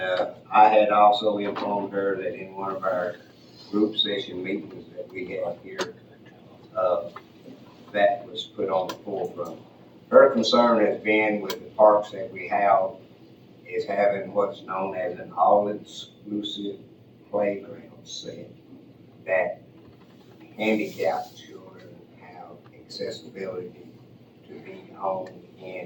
I had also informed her that in one of our group session meetings that we had here, that was put on the forefront. Her concern has been with the parks that we have, is having what's known as an all-inclusive playground set that handicapped children accessibility to be on, in,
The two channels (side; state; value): both; identical; correlation 1.00